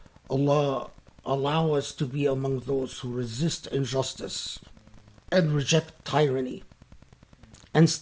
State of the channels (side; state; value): both; identical; correlation 1.00